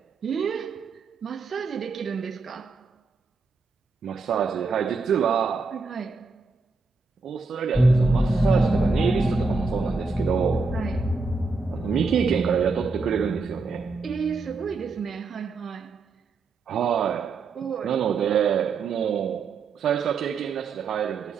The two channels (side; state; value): left; quieter; 4.2 dB